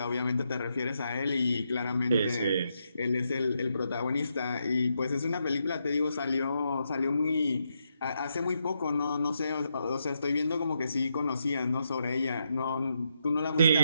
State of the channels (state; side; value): inverted; both; correlation -0.81